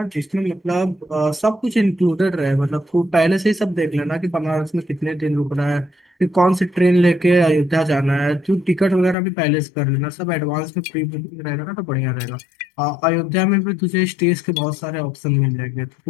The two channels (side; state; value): right; drops out; at 9.2 s